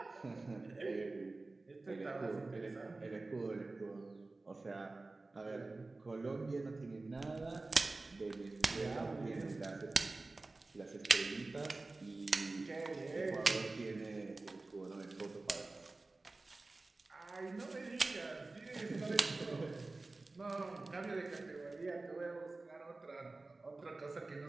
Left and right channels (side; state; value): left; quieter; 3.3 dB